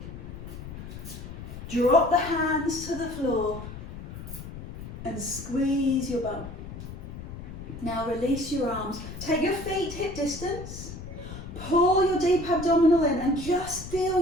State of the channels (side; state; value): left; noise; rumble, 11 dB below the sound